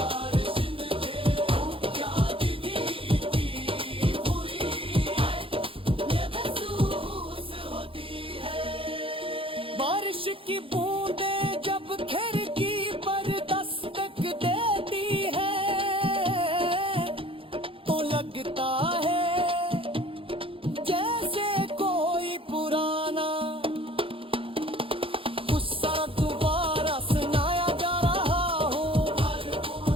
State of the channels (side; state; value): left; late; 0.26 ms